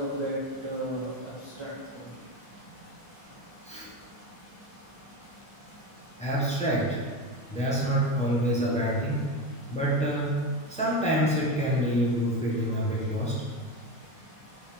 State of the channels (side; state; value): both; normal; correlation 0.20